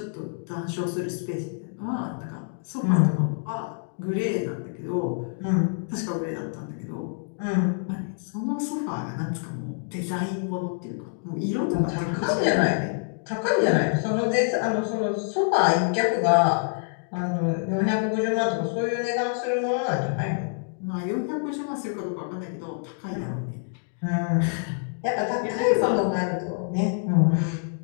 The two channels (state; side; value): silent; right; digital silence